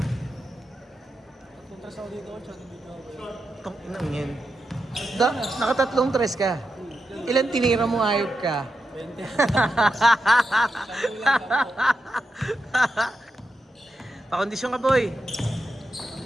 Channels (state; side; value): normal; both; correlation 0.87